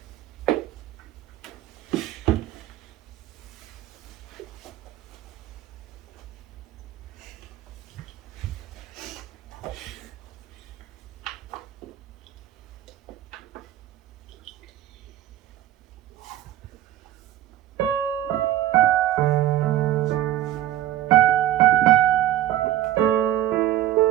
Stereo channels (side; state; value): left; quieter; 13.1 dB